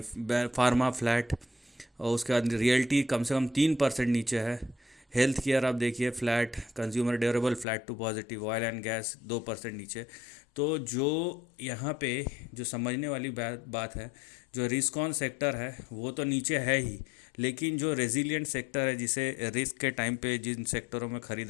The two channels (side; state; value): right; drops out; at 7.7 s